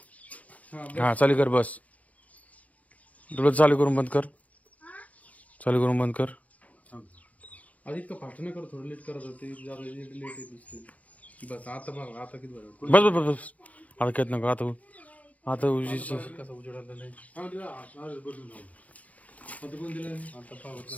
हा चालू कर बस डोळे चालू करून बंद कर चालू करून बंद कर आधी इतकं फास्ट नाही करत थोडं लेट करत होते लेट येत दिसते बस आता बघ आता किती बरं बस बस बस बस आता कहत नको आता आता कसं उजेड आलं नाही आता कोण दिलं आता पाहू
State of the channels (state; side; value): late; right; 0.068 ms